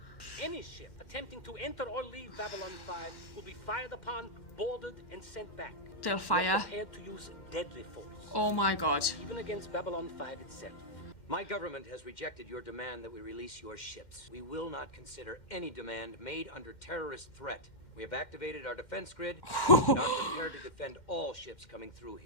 Any ship attempting to enter or leave Babylon 5 will be fired upon, boarded, and sent back. They'll We are fire. prepared to use deadly force, Oh my god. even against Babylon 5 itself. My government has rejected your demand that we release your ships. We will not consider any demand made under terrorist threat. We have activated our defense grid and are prepared to defend all ships coming through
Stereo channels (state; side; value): late; right; 2.1 ms